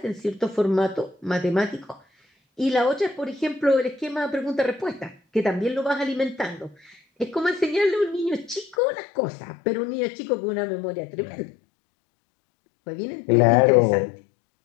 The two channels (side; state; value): right; drops out; at 8.8 s